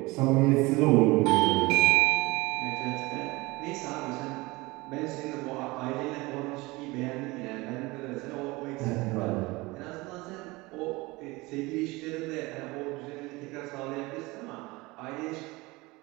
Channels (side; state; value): left; quieter; 22.6 dB